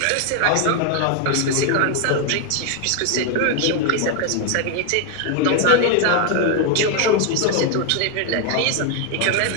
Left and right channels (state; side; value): different; both; correlation 0.01